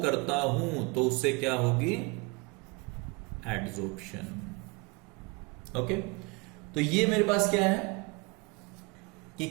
करता हूं तो उससे क्या होगी, एड्सॉर्प्शन। ओके, तो ये मेरे पास क्या है कि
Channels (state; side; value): quieter; left; 28.6 dB